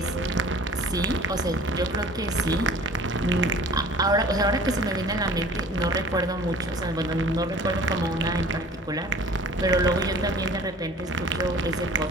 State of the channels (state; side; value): normal; both; correlation 0.47